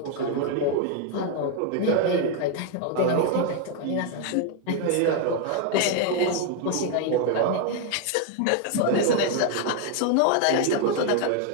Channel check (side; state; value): both; different; correlation 0.00